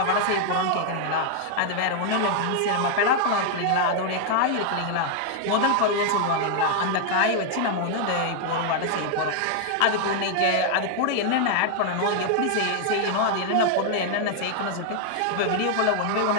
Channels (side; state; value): both; different; correlation 0.00